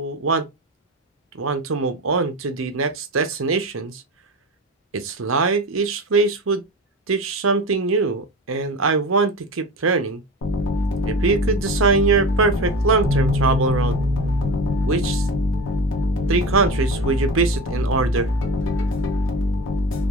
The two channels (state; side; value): normal; both; correlation 0.28